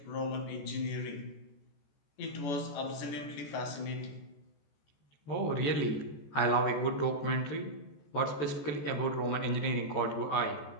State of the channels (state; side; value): late; right; 14 ms